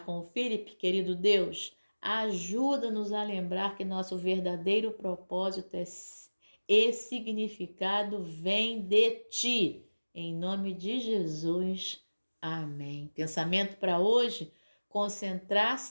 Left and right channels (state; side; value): inverted; both; correlation -1.00